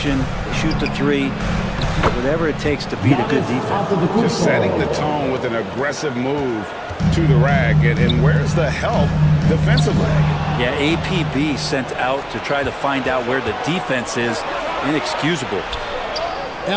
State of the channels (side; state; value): both; identical; correlation 1.00